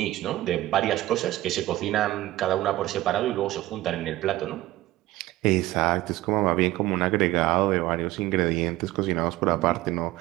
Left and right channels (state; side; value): quieter; left; 16.6 dB